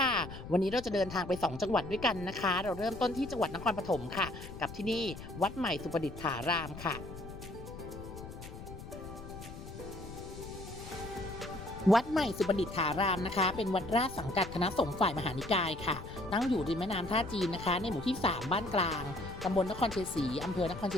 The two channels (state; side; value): noise; left; rumble, 12 dB below the sound